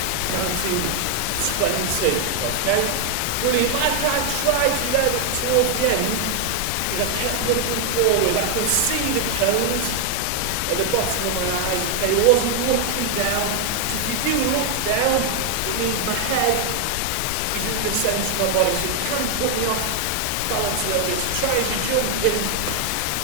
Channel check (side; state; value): both; different; correlation 0.00